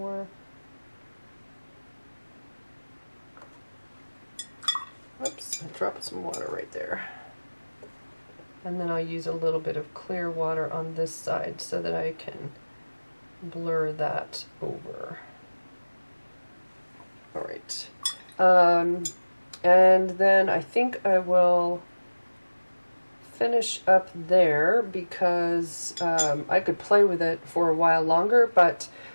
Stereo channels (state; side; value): inverted; both; correlation -1.00